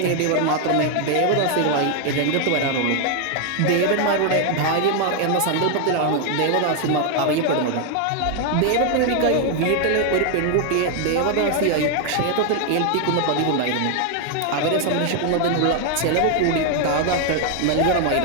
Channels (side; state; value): both; different; correlation 0.00